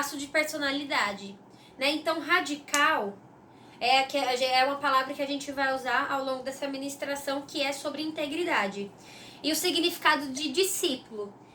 de personalidade, né? Então, radical é uma palavra que a gente vai usar ao longo dessa ministração, que é sobre integridade. E o significado de discípulo,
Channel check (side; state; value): both; identical; correlation 1.00